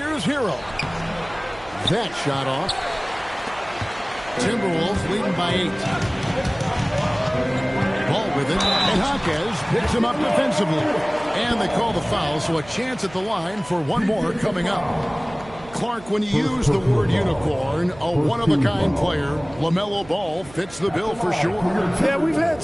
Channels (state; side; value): noise; right; hum, 20 dB below the sound